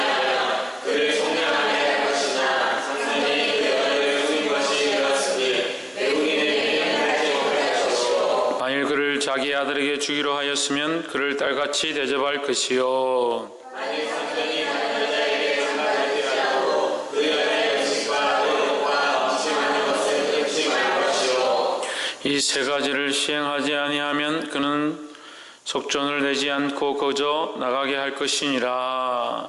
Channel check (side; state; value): both; identical; correlation 1.00